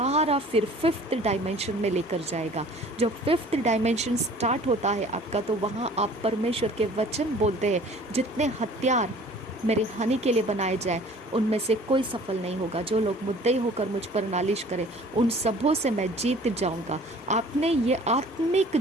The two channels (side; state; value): both; normal; correlation 0.49